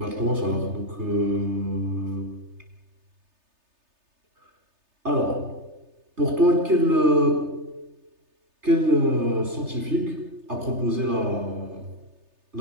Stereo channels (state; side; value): late; left; 3.3 ms